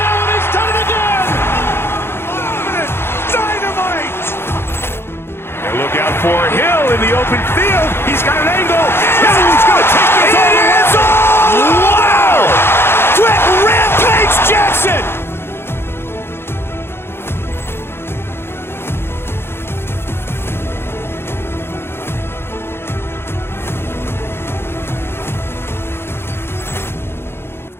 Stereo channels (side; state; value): right; late; 0.11 ms